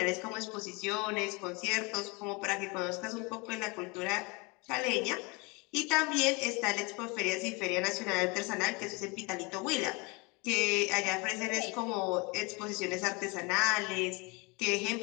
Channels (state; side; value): quieter; right; 28.1 dB